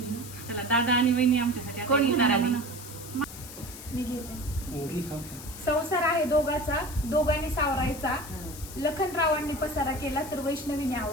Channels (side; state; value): left; noise; hiss, 13 dB below the sound